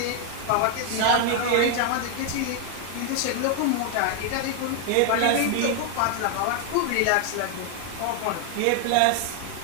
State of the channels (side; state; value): both; different; correlation 0.00